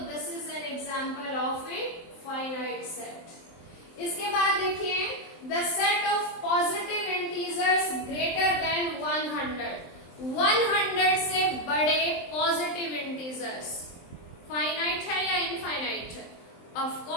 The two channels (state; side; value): late; right; 23 ms